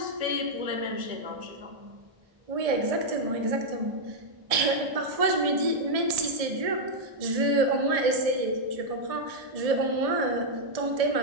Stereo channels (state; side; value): late; left; 1.6 ms